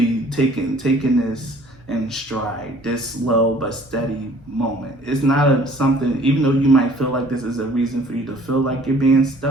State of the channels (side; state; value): both; normal; correlation 0.54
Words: taking this in stride, this slow but steady moment. It's not something, even though you might feel like this is a reason for you to feel like you're being